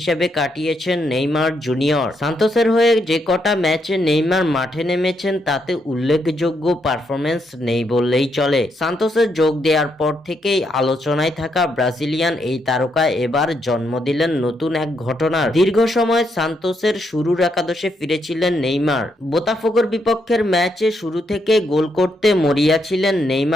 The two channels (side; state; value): both; normal; correlation 0.78